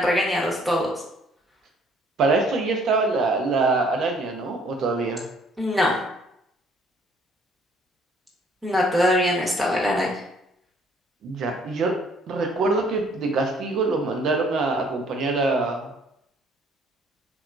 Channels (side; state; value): both; normal; correlation 0.61